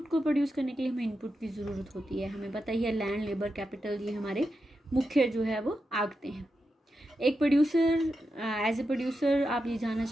को प्रोड्यूस करने के लिए हमें इनपुट की ज़रूरत होती है। हमें पता ही है लैंड, लेबर, कैपिटल, ये हमारे मुख्य जो है वो आगते हैं। एक प्रोड्यूसर, एज ए प्रोड्यूसर आप ये जानना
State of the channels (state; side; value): normal; both; correlation 0.88